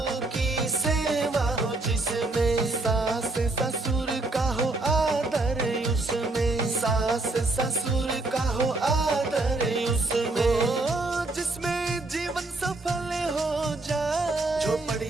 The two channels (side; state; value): left; quieter; 3.1 dB